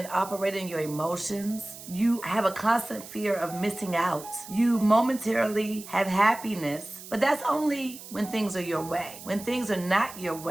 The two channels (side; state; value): right; noise; hiss, 15 dB below the sound